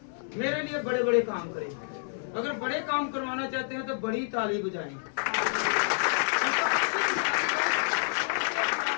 मेरे लिए बड़े बड़े काम करे? अगर बड़े काम करवाना चाहते हैं तो बड़ी ताली बजाएं।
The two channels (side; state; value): right; silent; 59 dB below the other